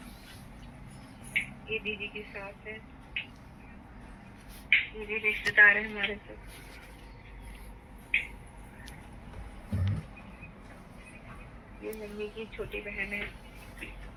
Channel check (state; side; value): identical; both; correlation 1.00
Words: ये दीदी की सास है, ये भी रिश्तेदार है हमारे सब। ये मम्मी की छोटी बहन है,